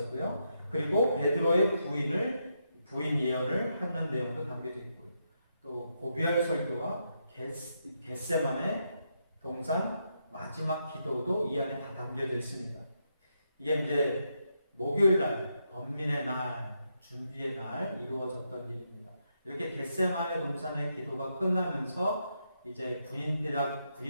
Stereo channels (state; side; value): inverted; both; correlation -0.82